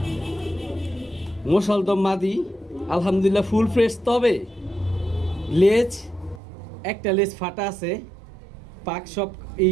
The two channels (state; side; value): drops out; left; at 6.4 s